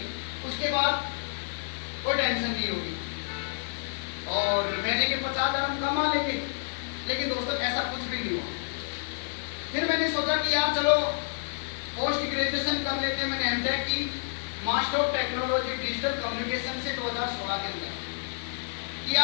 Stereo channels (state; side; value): silent; right; 58 dB below the other